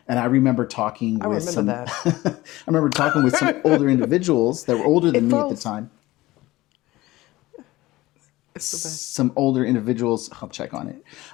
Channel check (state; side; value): quieter; right; 18.3 dB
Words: And I remember talking with remember some that. I remember talking with some older individuals that were older than me at the froze. time. It's the best. Some older individuals, I'll check on it.